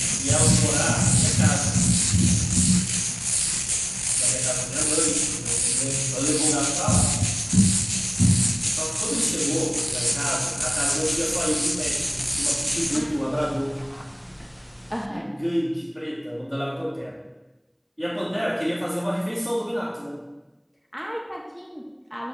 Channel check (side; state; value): both; identical; correlation 1.00